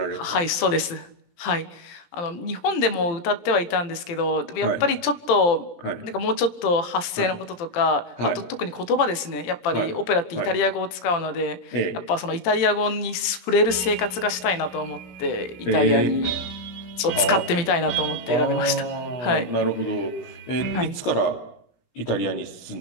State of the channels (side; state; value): right; late; 17 ms